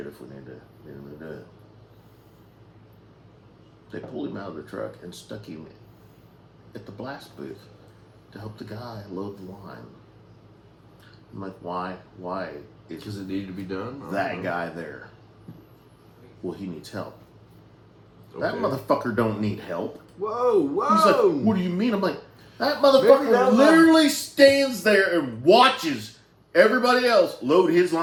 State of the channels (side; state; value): both; identical; correlation 1.00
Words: if we need him to do it. They pulled him out of the truck and stuck him at the blast booth to help the guy load the line. I'm like, why? Why is because it needed to be done. that guy there? Well, he needs help. Okay. That motherfucker don't need help. Whoa! He's like, what do you mean? I'm like, that Maybe motherfucker that literally stands there and watches everybody else load his